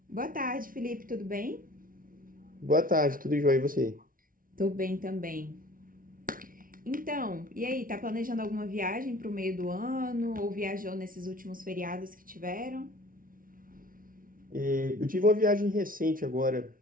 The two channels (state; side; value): late; left; 0.40 ms